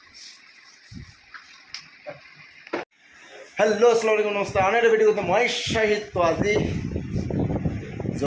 अस्सलाम नमस्ते आने भिडिओ मैं शाहिद तो आज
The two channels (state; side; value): identical; both; correlation 1.00